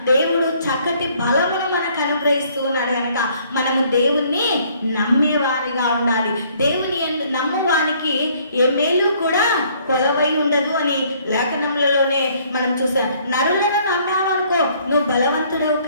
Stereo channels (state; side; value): inverted; both; correlation -0.62